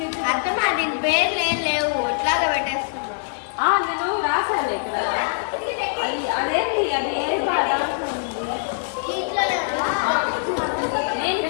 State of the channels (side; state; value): right; silent; 63 dB below the other